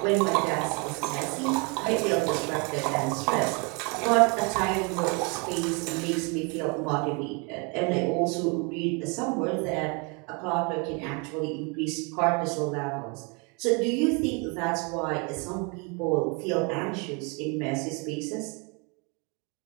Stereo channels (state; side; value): quieter; left; 32.2 dB